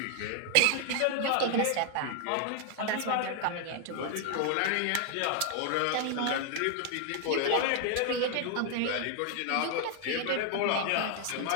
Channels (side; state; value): both; different; correlation 0.00